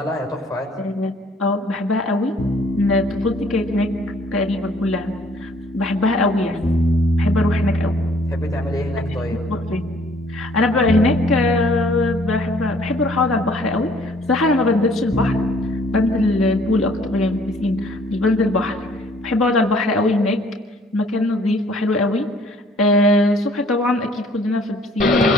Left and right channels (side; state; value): both; normal; correlation 0.59